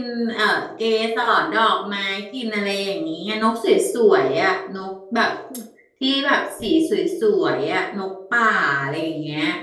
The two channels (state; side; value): identical; both; correlation 1.00